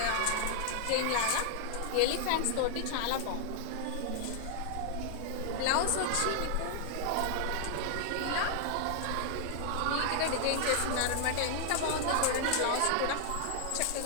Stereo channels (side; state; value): both; different; correlation 0.00